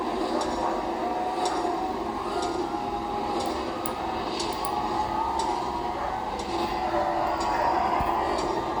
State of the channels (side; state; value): both; identical; correlation 1.00